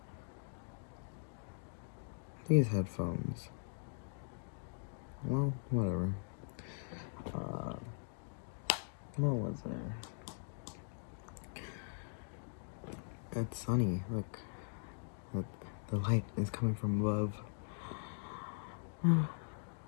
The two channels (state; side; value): silent; right; digital silence